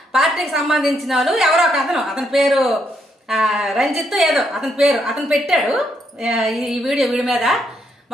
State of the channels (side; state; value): both; normal; correlation 0.76